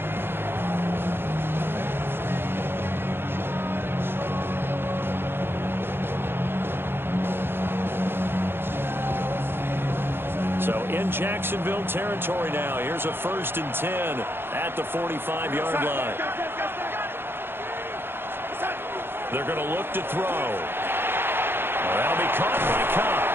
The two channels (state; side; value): late; left; 0.11 ms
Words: So in Jacksonville territory now. Here's a 1st and 10 at the 45-yard line. They're going to look to throw. That'll be caught by Cobb.